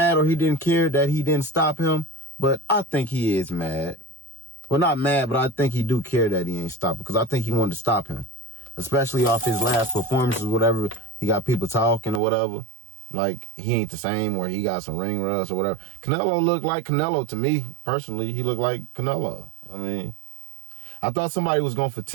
or he didn't care that he didn't stop him. But I think he is mad. Well, not mad, but I think he do care that he ain't stopping, because I think he wanted to stop him. Especially off his last performances, whatever. He got people talking or whatever. Like, he ain't the same, or he got some ring rust or whatever. Canelo looked like Canelo to me, personally. He looked like Canelo. I mean, I thought somebody was going to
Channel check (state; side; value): drops out; left; at 12.2 s